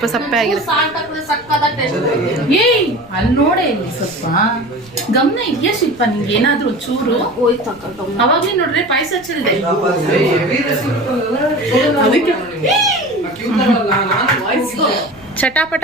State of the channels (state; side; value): noise; right; rumble, 25 dB below the sound